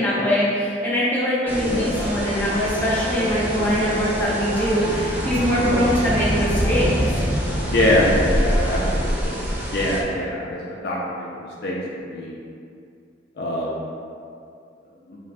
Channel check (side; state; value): both; normal; correlation 0.52